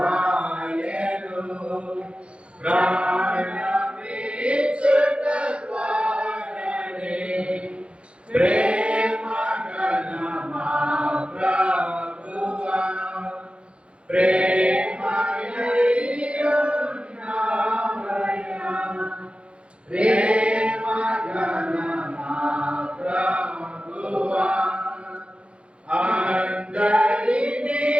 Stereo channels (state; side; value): late; left; 0.059 ms